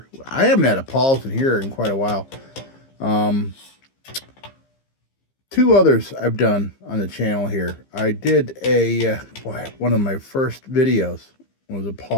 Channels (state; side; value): late; right; 15 ms